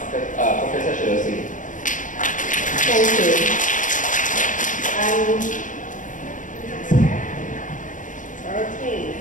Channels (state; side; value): late; right; 0.37 ms